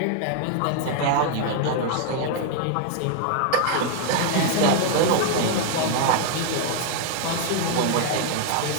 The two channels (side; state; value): both; different; correlation 0.00